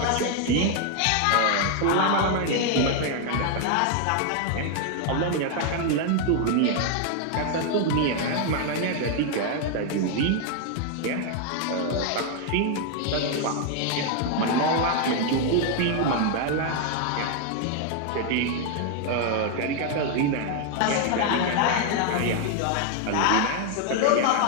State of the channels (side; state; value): both; different; correlation 0.00